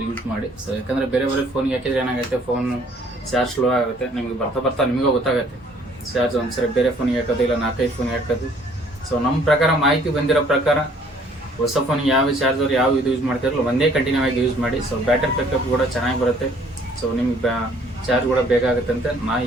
ಯೂಸ್ ಮಾಡಿ. ಸೊ ಯಾಕಂದರೆ ಬೇರೆ ಫೋನ್ಗೆ ಹಾಕಿದ್ರೆ ಏನಾಗುತ್ತೆ, ಫೋನ್ ಚಾರ್ಜ್ ಸ್ಲೋ ಆಗುತ್ತೆ. ನಿಮಗೆ ಬರ್ತಾ ನಿಮಗೂ ಗೊತ್ತಾಗುತ್ತೆ ಚಾರ್ಜ್ ಒಂದ್ಸರಿ ಬೇರೆ ಫೋನಿಗೆ ಹಾಕೋದು ಇಲ್ಲ 4-5 ಫೋನಿಗೆ ಹಾಕೋದು. ಸೊ ನಮ್ಮ ಪ್ರಕಾರ ಮಾಹಿತಿ ಬಂದಿರೋ ಪ್ರಕಾರ ಹೊಸ ಫೋನಿಗೆ ಯಾವ ಚಾರ್ಜರ್ ಯಾವ ಇದು ಯೂಸ್ ಮಾಡ್ತಿರಲ್ಲ ಒಂದೇ ಕಂಟಿನ್ಯೂ ಆಗಿ ಯೂಸ್ ಮಾಡಿ. ಸೊ ಬ್ಯಾಟರಿ ಬ್ಯಾಕಪ್ ಕೂಡ ಚೆನ್ನಾಗಿ ಬರುತ್ತೆ. ಸೊ ನಿಮ್ಗೆ ಚಾರ್ಜ್ ಕೂಡ ಬೇಕಾಗುತ್ತೆ ಅಂತ ನಾನು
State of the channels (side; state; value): both; normal; correlation 0.59